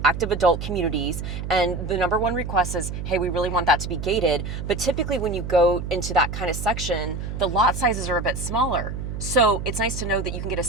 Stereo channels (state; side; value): noise; right; hum, 6 dB below the sound